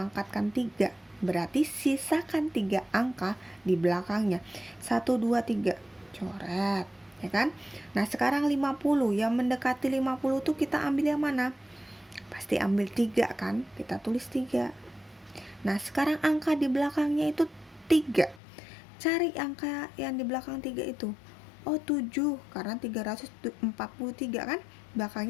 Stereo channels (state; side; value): drops out; right; at 18.4 s